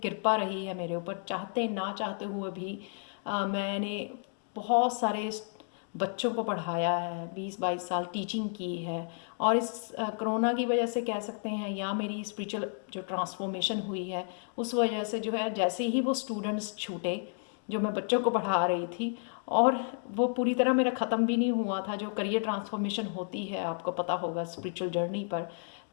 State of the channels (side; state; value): right; silent; 57 dB below the other